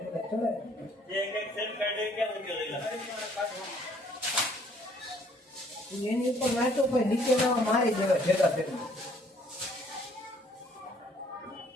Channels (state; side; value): normal; both; correlation 0.61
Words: એની ઉપર નાચો કોઈ નીચે ના મારી દેવા ભેગા ભેગા।